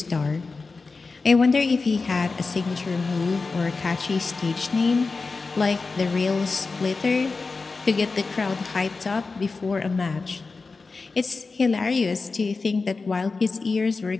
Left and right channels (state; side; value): quieter; right; 4.1 dB